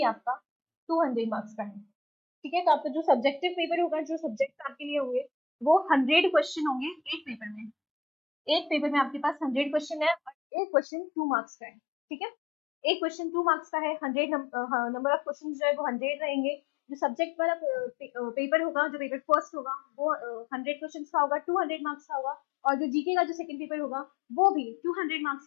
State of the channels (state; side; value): drops out; right; at 10.4 s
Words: आपका 200 मार्क्स का है। ठीक है, तो आपका जो सब्जेक्टिव पेपर होगा, जो सब्जेक्ट आपके लिए होंगे वो 100 क्वेश्चन होंगे एक पेपर में। एक पेपर में आपके पास 100 क्वेश्चन है और एक क्वेश्चन 2 मार्क्स का है। ठीक है, एक क्वेश्चन 2 मार्क्स का है, 100 नंबर ऑफ क्वेश्चन जो है वो 100 रहेंगे। जो सब्जेक्ट वाला पेपर होगा, जो पेपर फर्स्ट होगा वो 100 क्वेश्चन का होगा, 200 मार्क्स का होगा। और जो जीके का जो सेकंड पेपर होगा वो भी 200 मार्क्स